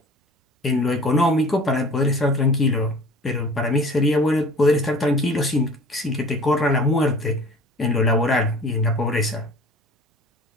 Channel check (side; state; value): both; normal; correlation 0.45